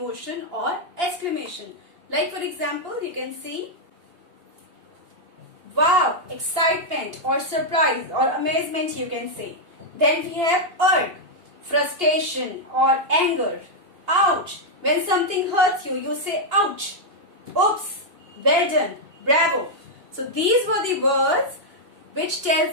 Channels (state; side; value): late; left; 2.8 ms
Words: or exclamation. Like for example, you can see wow, excitement or surprise or amazement you can say. Then we have irk, frustration or anger. Ouch, when something hurts you, you say ouch. Oops, well done, bravo. So these were the words